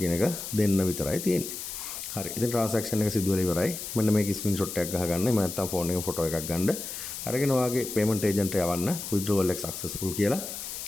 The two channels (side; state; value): left; noise; hiss, 7 dB below the sound